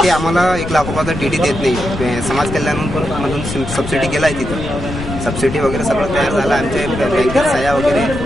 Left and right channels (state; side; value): noise; left; rumble, 8 dB below the sound